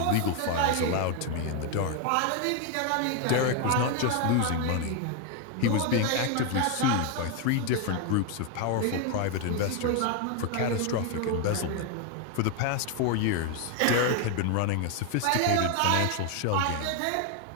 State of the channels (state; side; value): different; both; correlation 0.01